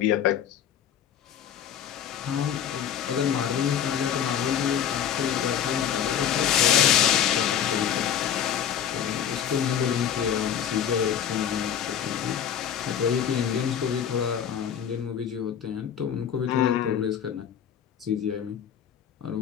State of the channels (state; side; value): quieter; right; 9.0 dB